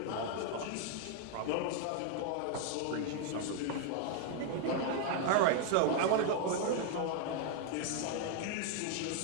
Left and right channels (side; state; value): both; different; correlation 0.00